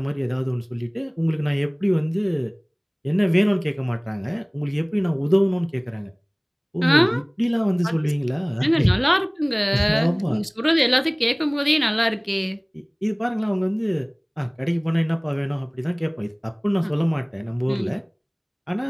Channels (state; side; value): identical; both; correlation 1.00